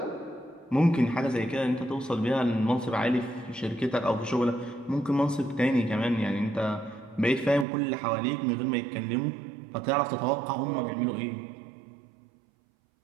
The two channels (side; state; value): left; drops out; at 7.7 s